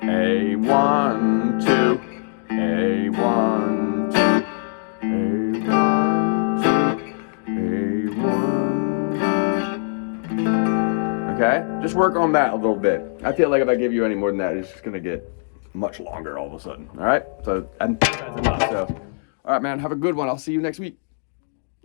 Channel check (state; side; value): silent; right; digital silence